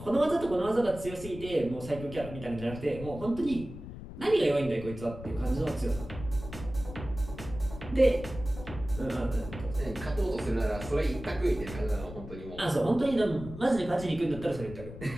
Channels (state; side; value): noise; left; rumble, 12 dB below the sound